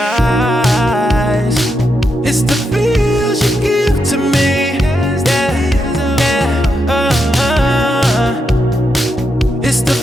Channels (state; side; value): normal; both; correlation 0.83